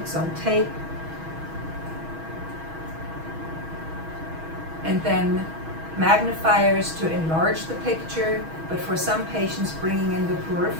on tape, and then magnifiers to enlarge the picture, but for some patients bringing in the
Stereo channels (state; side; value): late; left; 6.2 ms